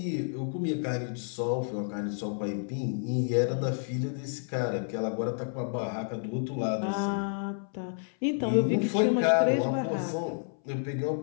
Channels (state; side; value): silent; right; 58 dB below the other